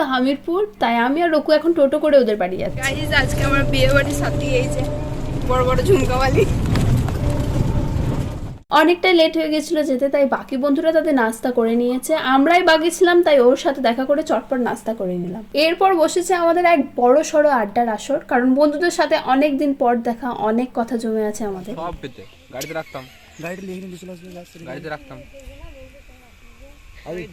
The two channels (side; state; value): both; identical; correlation 1.00